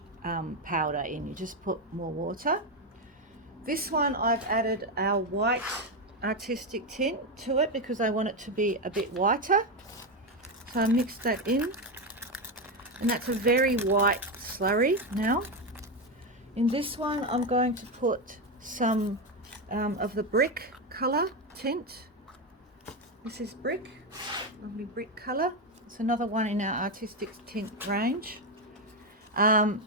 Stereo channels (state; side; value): normal; both; correlation 0.10